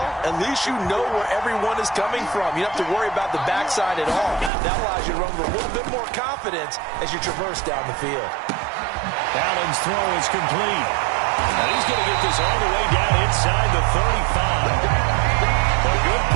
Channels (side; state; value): left; drops out; at 4.5 s